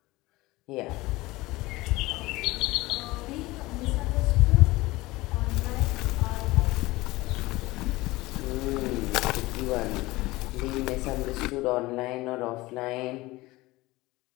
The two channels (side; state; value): right; quieter; 20.1 dB